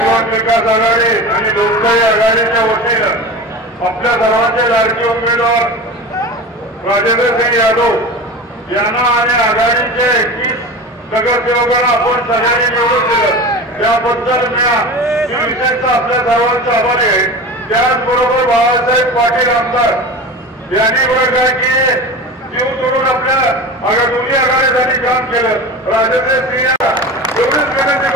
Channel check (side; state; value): both; normal; correlation 0.31